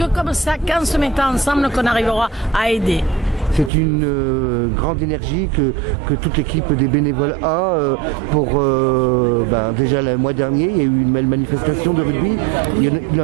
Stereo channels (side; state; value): left; drops out; at 3.7 s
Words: comme ça, qu'en se mettant ensemble, qu'on arrivera à aider. C'est une grande énergie que toute l'équipe des bénévoles a pour déjà le mois dernier il y a eu une belle manifestation de rugby, il y